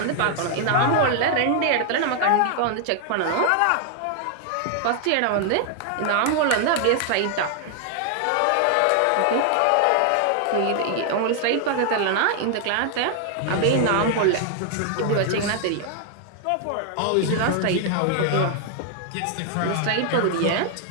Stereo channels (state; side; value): different; both; correlation 0.00